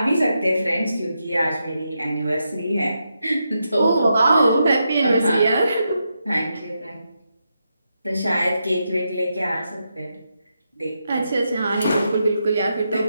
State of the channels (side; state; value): both; inverted; correlation -0.84